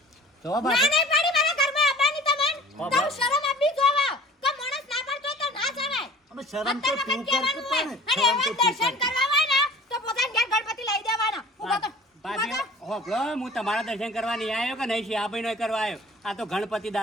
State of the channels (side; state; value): both; normal; correlation 0.45